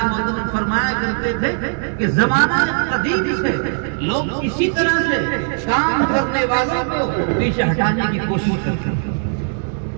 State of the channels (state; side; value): silent; left; 61 dB below the other